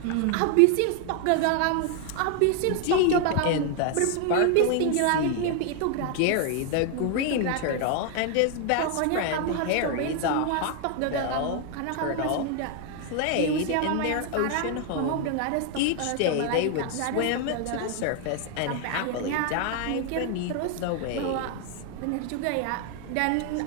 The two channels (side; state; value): both; different; correlation 0.00